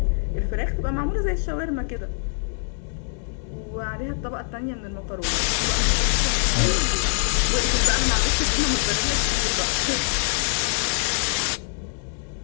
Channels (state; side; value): silent; right; digital silence